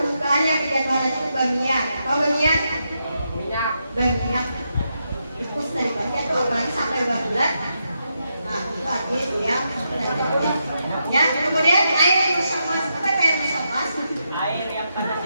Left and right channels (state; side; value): inverted; both; correlation -0.83